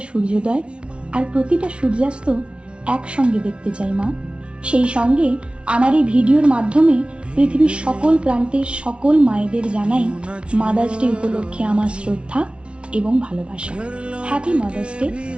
সূর্যোদয় আর প্রতিটা সূর্যাস্ত একসঙ্গে দেখতে চাই মা। সেই সঙ্গে আমার এই ভিডিওর মাধ্যমে পৃথিবীর সকল প্রান্তের সকল মায়েদের জানাই মাদার্স ডে উপলক্ষে আমার শ্রদ্ধা এবং ভালোবাসা। Happy mother's day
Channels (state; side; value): late; left; 0.059 ms